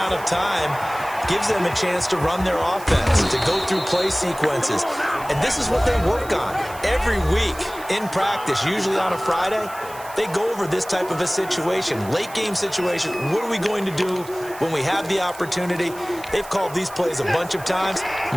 of time gives them a chance to run their offense, to go through play sequences. And this is what they work on every week in practice, usually on a Friday. They go over this type of a situation, late game situation. What are we going to do when we have the opportunity? They've called these plays a bunch of times.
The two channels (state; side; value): noise; right; hiss, 18 dB below the sound